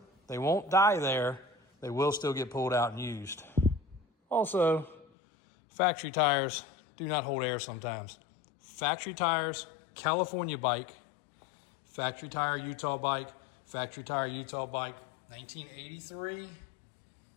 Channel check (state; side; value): drops out; right; at 5.1 s